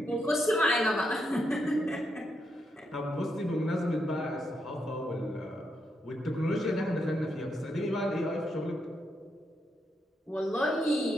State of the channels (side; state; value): both; normal; correlation 0.81